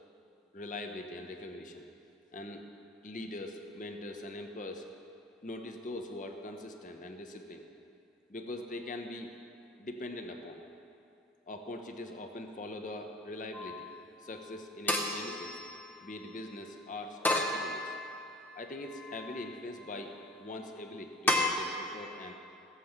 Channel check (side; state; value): both; normal; correlation 0.44